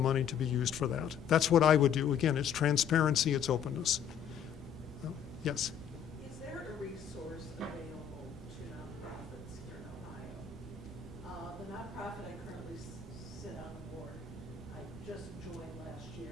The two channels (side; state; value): right; quieter; 8.2 dB